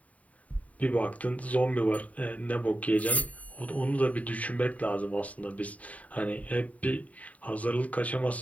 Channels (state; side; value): late; right; 0.070 ms